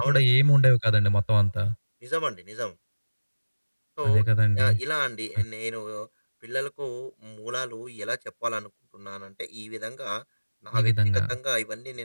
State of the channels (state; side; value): inverted; both; correlation -1.00